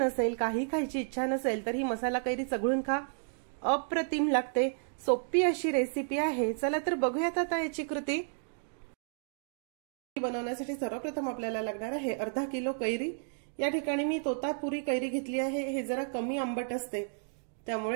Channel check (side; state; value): left; silent; digital silence